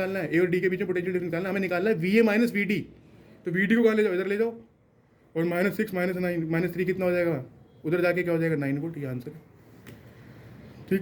है, ए और डी के बीच में पोटेंशियल डिफरेंस निकालना है, हमें निकालना है V A minus V D. तो वी डी को कहाँ ले जाओ, इधर ले जाओ, और -6 -9 -3 कितना हो जाएगा, उधर जाके क्या हो जाएगा, 9 वोल्ट। ये आंसर है,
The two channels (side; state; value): both; identical; correlation 1.00